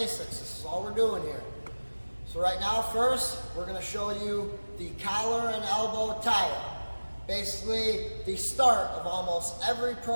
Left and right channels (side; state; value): both; inverted; correlation -1.00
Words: This is all we're doing here. So right now, first, we're going to show you the collar and elbow tie-up. Basically, the start of almost every